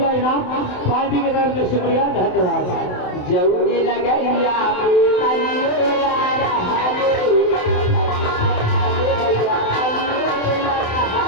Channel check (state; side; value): late; right; 27 ms